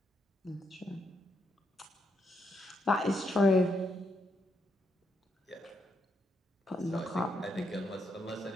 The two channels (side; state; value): both; normal; correlation 0.78